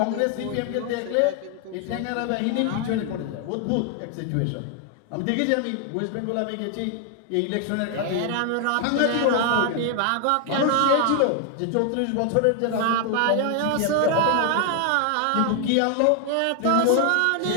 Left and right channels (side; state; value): both; different; correlation 0.00